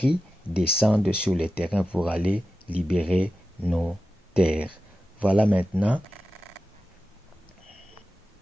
descendent sur le terrain pour aller libérer nos terres. Voilà maintenant,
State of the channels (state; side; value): normal; both; correlation 0.92